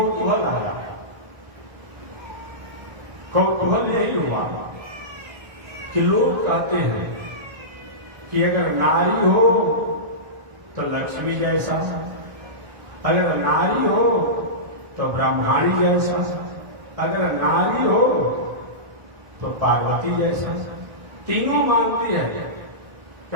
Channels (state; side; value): late; left; 1.4 ms